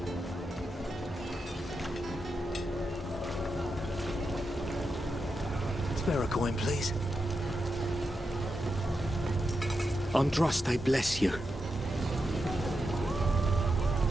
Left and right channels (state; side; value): normal; both; correlation 0.87